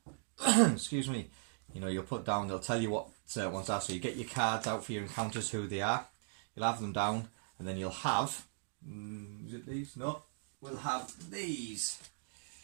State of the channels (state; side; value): silent; left; digital silence